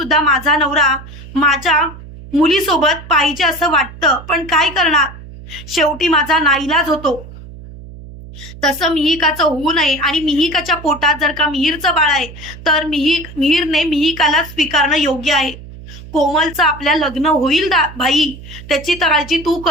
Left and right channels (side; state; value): right; noise; hum, 16 dB below the sound